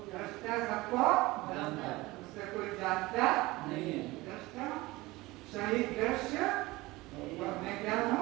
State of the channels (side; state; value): left; quieter; 20.6 dB